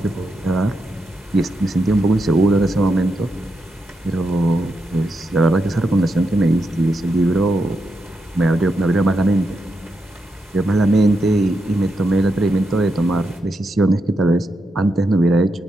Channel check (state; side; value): normal; both; correlation 0.84